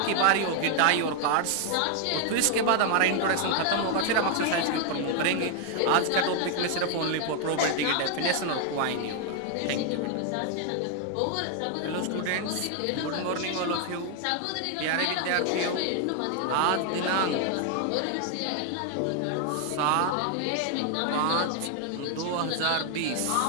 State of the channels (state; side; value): different; both; correlation 0.00